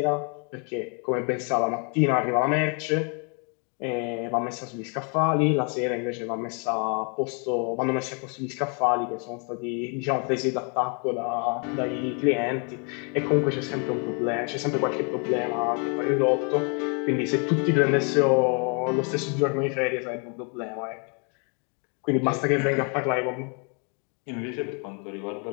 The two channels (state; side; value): quieter; right; 36.9 dB